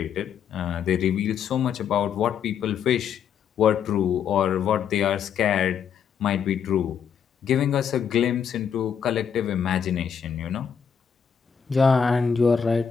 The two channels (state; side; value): quieter; right; 7.4 dB